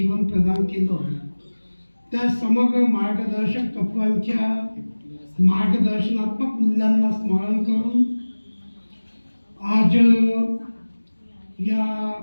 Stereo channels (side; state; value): both; inverted; correlation -1.00